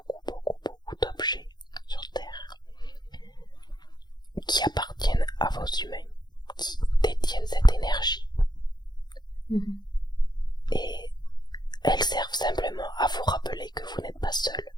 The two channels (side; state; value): right; late; 0.21 ms